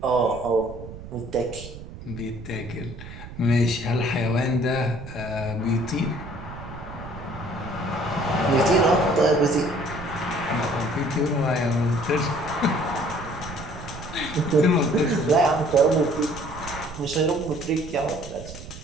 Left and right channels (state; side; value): noise; right; rumble, 13 dB below the sound